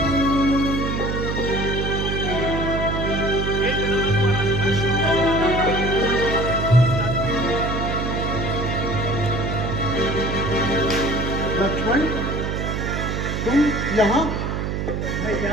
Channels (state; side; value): noise; right; hum, 2 dB below the sound